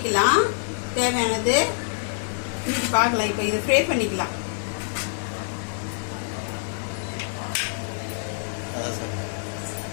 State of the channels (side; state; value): right; silent; digital silence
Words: தேவையானது இன்னைக்கு பார்க்கலாம். இப்போ இதை ஃப்ரை பண்ணிக்கலாம்.